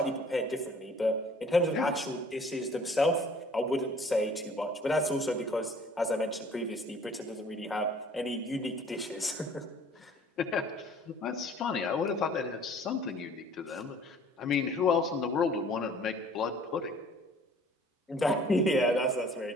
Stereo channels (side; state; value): both; normal; correlation 0.53